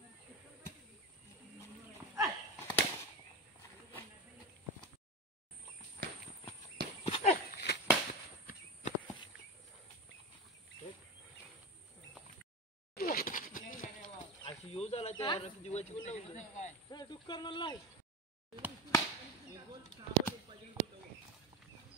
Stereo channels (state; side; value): normal; both; correlation 0.21